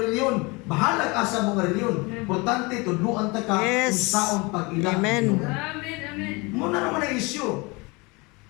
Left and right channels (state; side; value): quieter; right; 26.5 dB